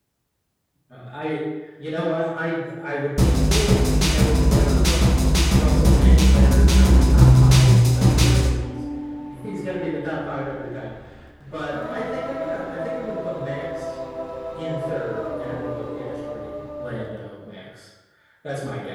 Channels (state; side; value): identical; both; correlation 1.00